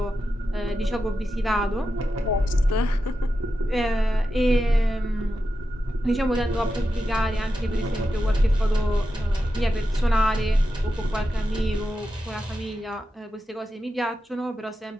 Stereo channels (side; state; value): both; normal; correlation 0.89